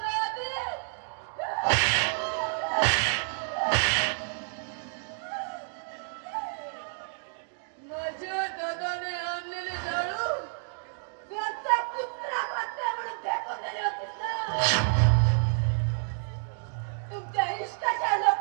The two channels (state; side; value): silent; left; digital silence